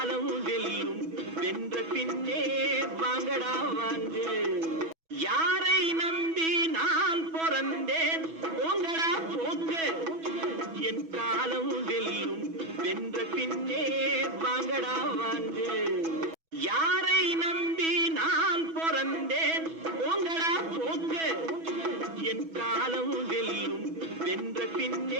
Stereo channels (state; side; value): late; left; 6.1 ms